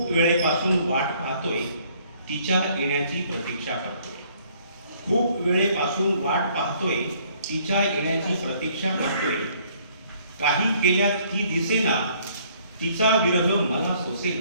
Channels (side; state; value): both; inverted; correlation -0.62